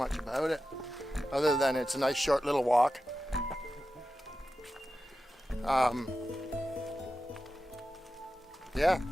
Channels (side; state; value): both; normal; correlation 0.92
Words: about it, other than it's a nice short little walk. Yeah.